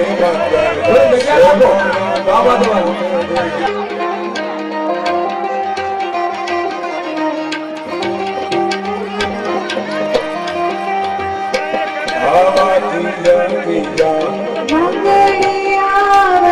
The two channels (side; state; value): both; identical; correlation 1.00